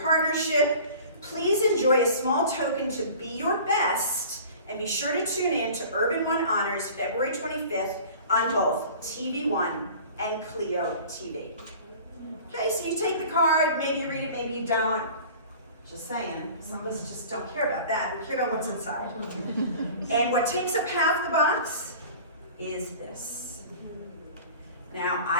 Please enjoy a small token to be your best, and be sure to tune in to Urban One Honors February 25th on both TV One and Clio TV. Okay, so you take the card, maybe you read it, maybe you don't. Just saying, some of us just don't care about that, we care about what's inside. And what takes up half the box is this. Now,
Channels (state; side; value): inverted; both; correlation -0.43